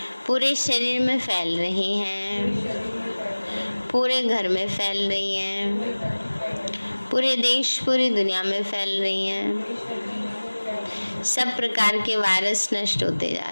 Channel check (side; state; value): both; inverted; correlation -1.00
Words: पूरे शरीर में फैल रही हैं, पूरे घर में फैल रही हैं, पूरे देश पूरी दुनिया में फैल रही हैं। सब प्रकार के वायरस नष्ट होते जा